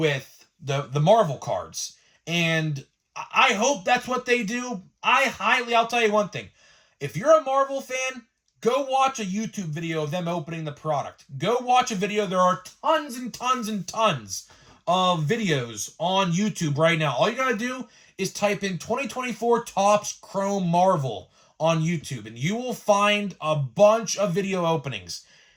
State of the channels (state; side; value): identical; both; correlation 1.00